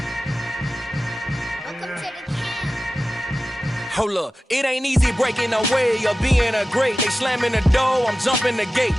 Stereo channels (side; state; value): both; normal; correlation 0.94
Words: Hold up, it ain't easy breaking away or being a great. They slamming the door, I'm jumping the gate.